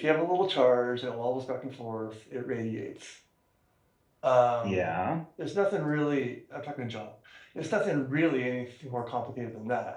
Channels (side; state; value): both; identical; correlation 1.00